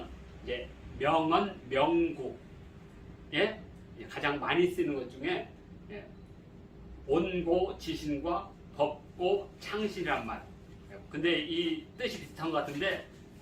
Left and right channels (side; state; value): both; identical; correlation 1.00